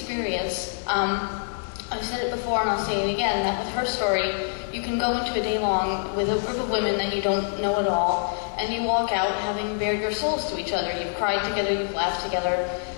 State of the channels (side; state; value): right; silent; 61 dB below the other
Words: I've said it before and I'll say it again, that with Herstory, you can go into a day-long with a group of women that you don't know at all, and you walk out having bared your souls to each other. You've cried together, you've laughed together,